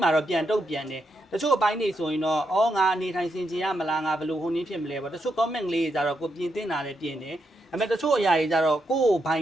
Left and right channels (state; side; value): normal; both; correlation 0.82